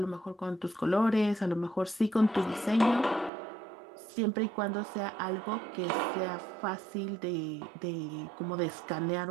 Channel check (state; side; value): drops out; left; at 3.3 s